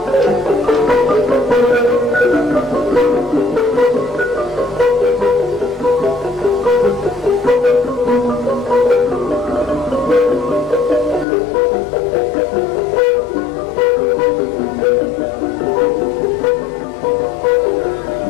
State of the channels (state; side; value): drops out; right; at 11.2 s